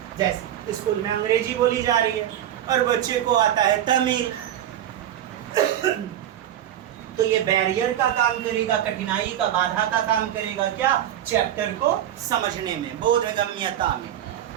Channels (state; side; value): quieter; left; 11.4 dB